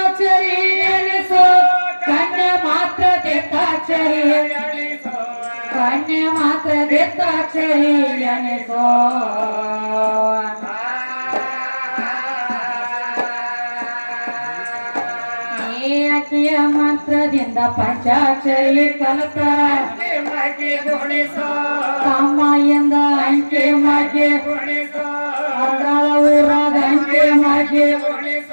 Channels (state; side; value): inverted; both; correlation -1.00